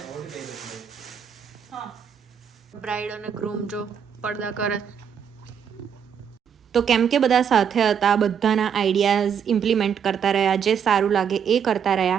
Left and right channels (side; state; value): left; quieter; 7.7 dB